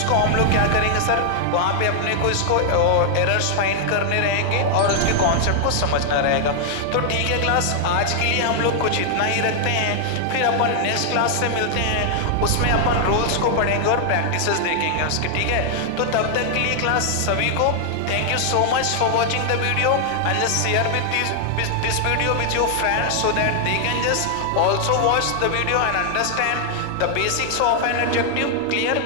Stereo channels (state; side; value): different; both; correlation 0.00